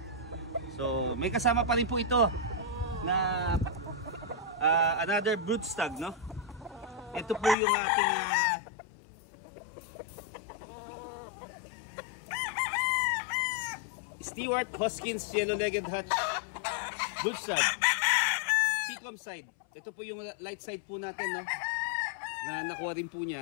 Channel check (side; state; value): right; drops out; at 7.6 s